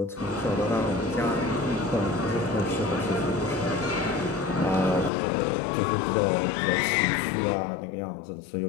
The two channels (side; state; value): right; drops out; at 5.1 s